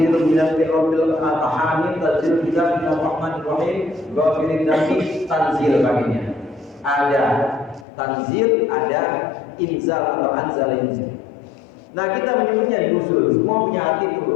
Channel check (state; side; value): drops out; right; at 7.9 s